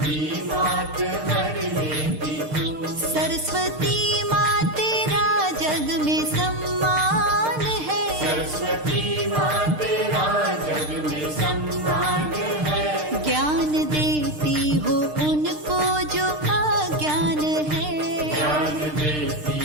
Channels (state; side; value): late; left; 6.6 ms